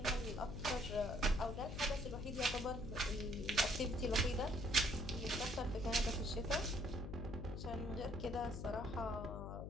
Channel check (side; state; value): left; noise; hum, 6 dB below the sound